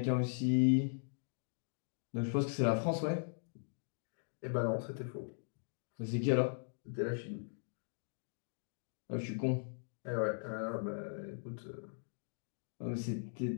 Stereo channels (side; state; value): right; silent; digital silence